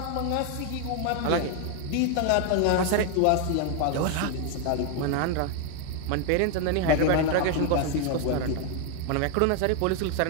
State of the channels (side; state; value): both; different; correlation 0.01